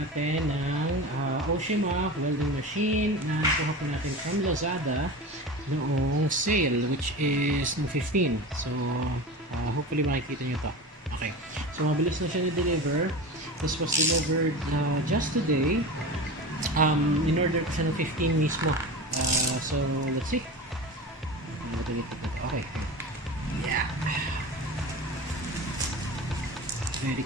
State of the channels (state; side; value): normal; both; correlation 0.30